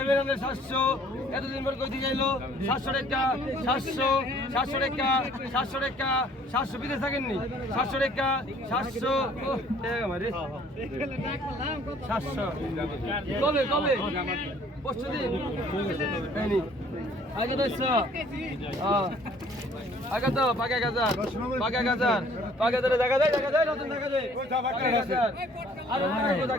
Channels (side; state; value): both; normal; correlation 0.57